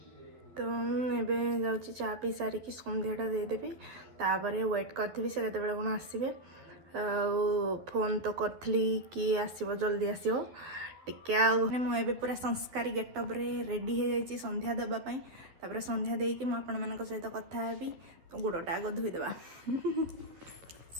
तो एबे जाऊँगी चा पी सारिकी संध्याटा देदेवी तापर वेट करी से केतबेले कौन आसबे। फोन तो करी कि आसो जल्दी आसो टे मुझे पूरा संस्कारी गेटअप रे रेडी हो जाइए संध्या देवाई। तापर संध्या देकी मुझे सहित कथा हेबी। तो गोड़टा आग धोईदेवा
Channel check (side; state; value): left; late; 12 ms